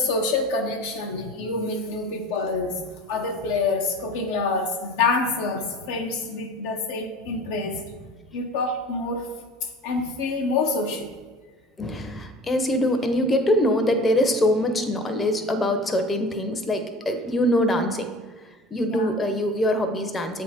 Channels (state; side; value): normal; both; correlation 0.39